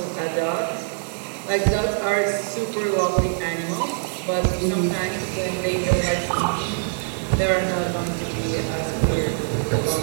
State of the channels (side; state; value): left; silent; digital silence